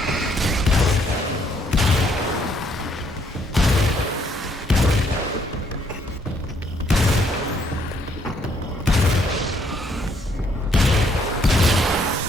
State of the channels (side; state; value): both; normal; correlation 0.69